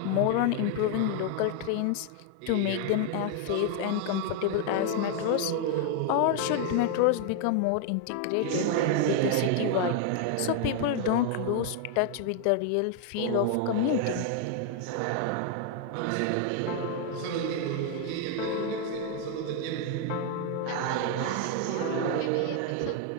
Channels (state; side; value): different; both; correlation 0.00